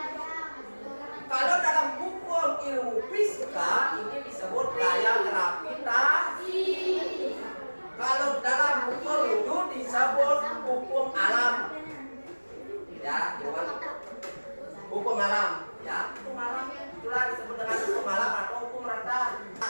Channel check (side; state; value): both; inverted; correlation -1.00